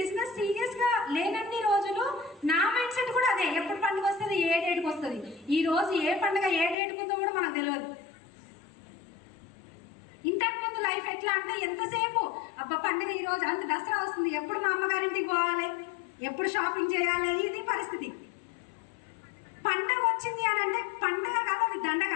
సీరియస్గా లేనన్ని రోజులు నా మైండ్ సెట్ కూడా అదే, ఎప్పుడు పండుగ వస్తుంది, ఏ డేట్కి వస్తుంది, ఈ రోజు ఏ పండుగ ఏ డేట్కి ఉందో కూడా మనకు తెలియదు. ఇంతకు ముందు లైఫ్ ఎట్లా అంటే ఎంతసేపు అబ్బా పండుగ ఈ రోజు అంత దసరా వస్తుంది, ఎప్పుడు మా అమ్మగారింటికి పోవాలి, ఎప్పుడు షాపింగ్ చేయాలి, ఇది పరిస్థితి. పండగ వచ్చింది అని అంటే పండగ కాదు, అది దండగ.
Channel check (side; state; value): right; drops out; at 6.8 s